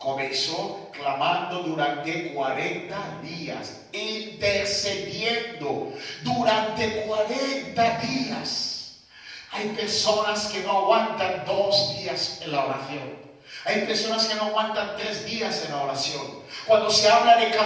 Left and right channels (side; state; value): both; identical; correlation 1.00